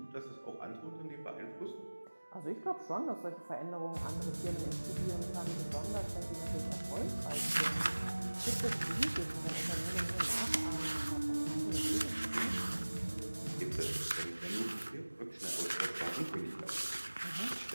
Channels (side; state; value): both; inverted; correlation -1.00